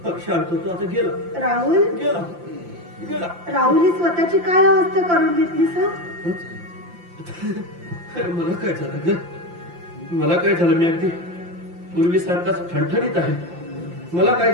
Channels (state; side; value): late; left; 5.8 ms